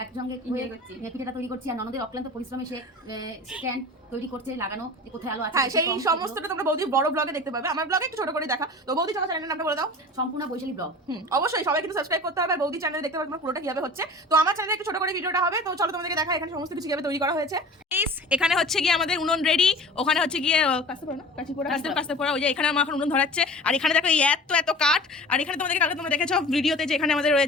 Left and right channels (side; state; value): both; normal; correlation 0.39